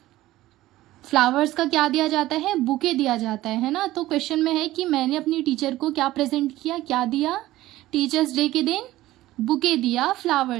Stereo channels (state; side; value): quieter; left; 16.0 dB